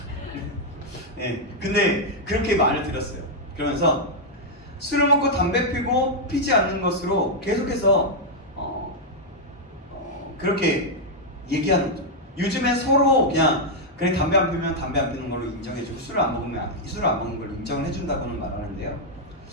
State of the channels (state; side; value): normal; both; correlation -0.03